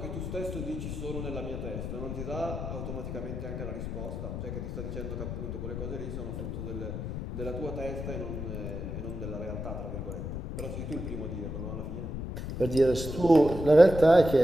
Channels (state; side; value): noise; left; rumble, 5 dB below the sound